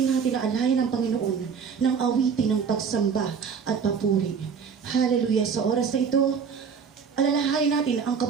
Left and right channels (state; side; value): quieter; left; 6.3 dB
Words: natin na alayan ng Panginoon ng awitin ng pagsamba at papuri. Hallelujah. Sa oras na ito, alalahanin natin ang